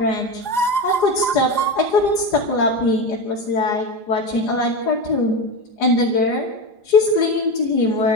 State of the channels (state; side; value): late; right; 4.9 ms